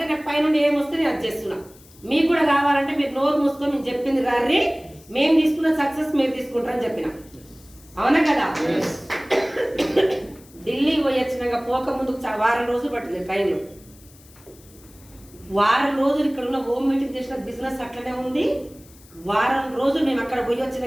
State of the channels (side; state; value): left; noise; hiss, 25 dB below the sound